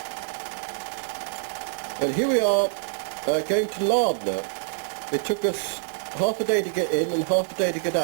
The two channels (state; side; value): silent; left; 57 dB below the other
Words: And here we are going to Lardner. It took us half a day to get in and half a day to get